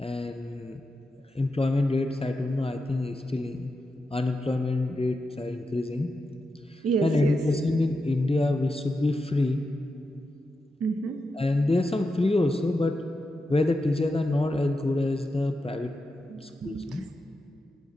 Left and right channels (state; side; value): normal; both; correlation 0.88